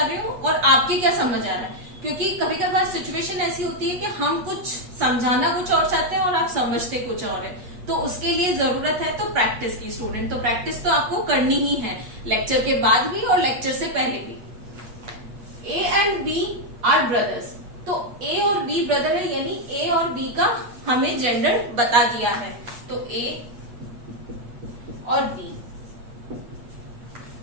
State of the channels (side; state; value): left; late; 8.4 ms